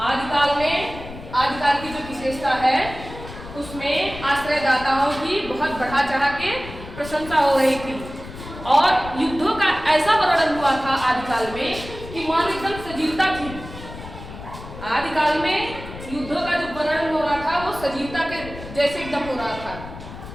आदिकाल में आदिकाल की जो विशेषता है उसमें आश्रयदाताओं की बहुत बढ़ा चढ़ा के प्रशंसा हो रही थी और युद्धों का ऐसा वर्णन हुआ था आदिकाल में कि मानो एकदम सजीवता थी। आदिकाल में युद्धों का जो वर्णन हो रहा था वो सजीवता के जैसे एकदम हो रहा था।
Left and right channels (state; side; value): noise; left; rumble, 13 dB below the sound